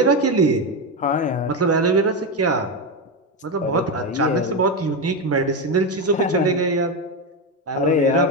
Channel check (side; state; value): both; normal; correlation 0.12